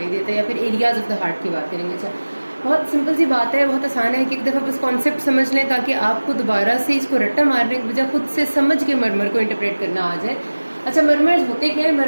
देता है, या फिर एरियाज ऑफ द हार्ट की बात करेंगे। अच्छा, बहुत सिंपल सी बात है, बहुत आसान है कि एक दफ़ा बस कॉन्सेप्ट समझ लें ताकि आपको दोबारा से इसको रट्टा मारने की बजाय खुद से समझ के मर्मर को इंटरप्रेट करना आ जाए। अच्छा, मर्मर्स होते क्या है?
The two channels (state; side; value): inverted; both; correlation -1.00